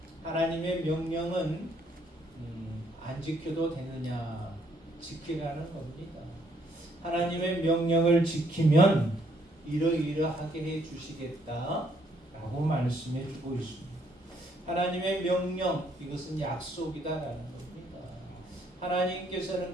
하나님의 명령은 안 지켜도 되느냐? 지키라는 겁니다. 하나님의 명령을 지키면 이러이러하게 해 주시겠다 라고 말씀해 주고 있습니다. 하나님의 명령, 이것은 약속이다라는 겁니다.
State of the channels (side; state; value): both; normal; correlation 0.69